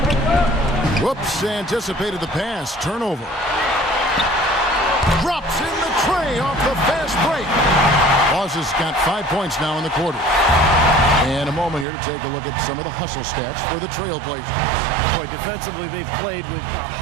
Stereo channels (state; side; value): drops out; left; at 11.9 s